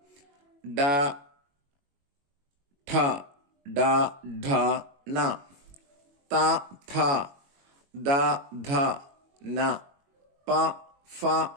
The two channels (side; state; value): left; late; 22 ms